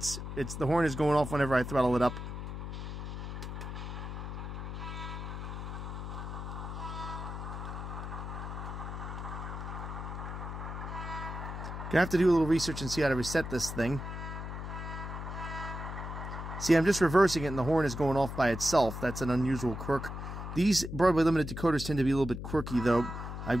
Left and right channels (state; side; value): noise; left; hum, 7 dB below the sound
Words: It's the horn is going off whenever I throttle it up. Gonna have to do a little research and see how to reset this thing. See, I'm just reversing it and the horn is going off by itself. That's an unusual quirk. These Broadway Limited decoders tend to be a little bit quirky, though. I've